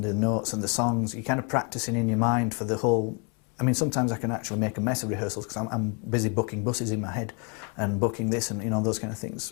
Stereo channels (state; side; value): quieter; right; 34.3 dB